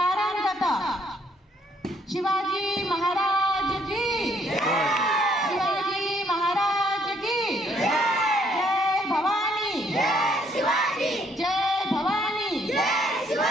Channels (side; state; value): both; normal; correlation 0.67